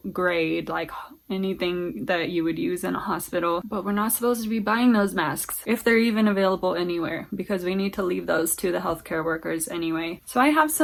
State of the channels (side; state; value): both; identical; correlation 1.00